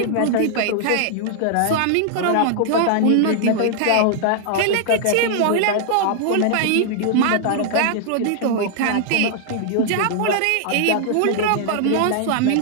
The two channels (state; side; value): different; both; correlation -0.01